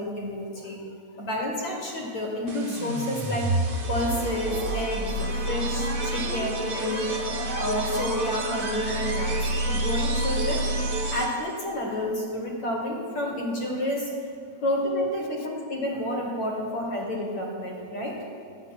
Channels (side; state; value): right; late; 8.9 ms